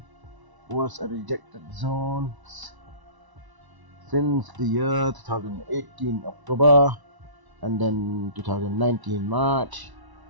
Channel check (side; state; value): left; late; 1.0 ms